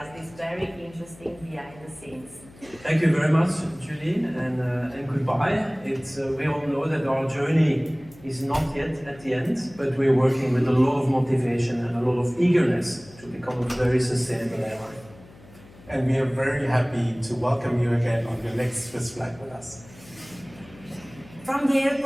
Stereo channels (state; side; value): noise; left; hum, 23 dB below the sound